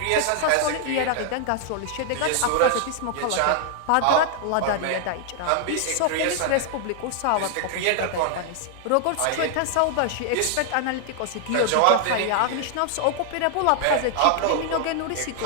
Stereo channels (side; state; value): both; different; correlation 0.00